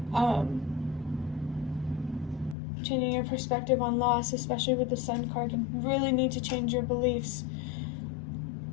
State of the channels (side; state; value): right; drops out; at 2.6 s